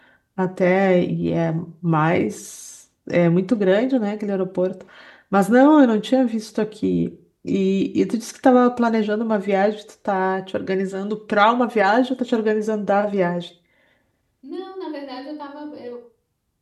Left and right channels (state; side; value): identical; both; correlation 1.00